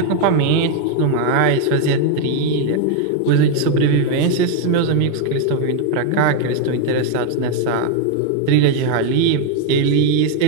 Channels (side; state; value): both; different; correlation 0.01